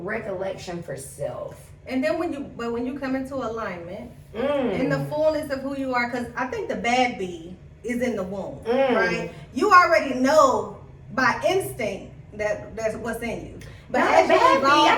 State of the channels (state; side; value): identical; both; correlation 1.00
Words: for self. And then when you come into alignment, Mm. in the fullness of who you are, because I think the bad bee is in the womb, Mm. right? You already know by instinct that's what's in you. But Not as a you bad bee. evolve I